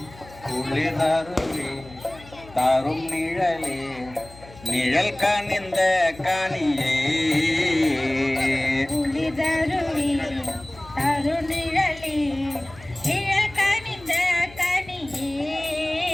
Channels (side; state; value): left; noise; hum, 20 dB below the sound